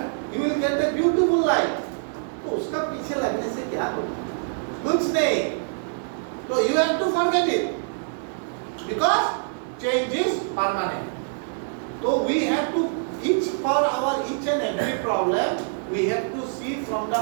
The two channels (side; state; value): left; silent; digital silence